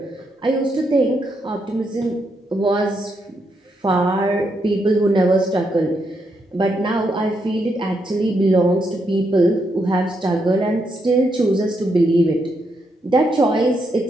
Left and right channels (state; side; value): normal; both; correlation 0.79